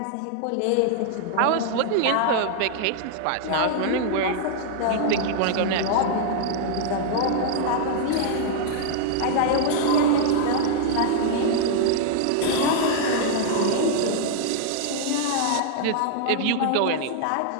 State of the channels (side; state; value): both; different; correlation -0.01